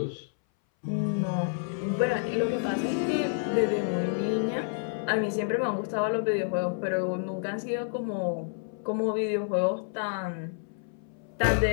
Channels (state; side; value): silent; right; 59 dB below the other